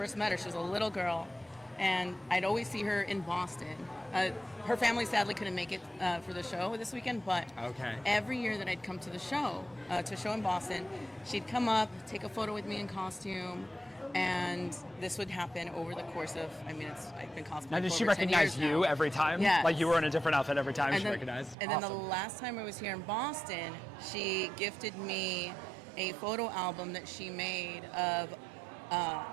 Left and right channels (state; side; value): drops out; left; at 21.6 s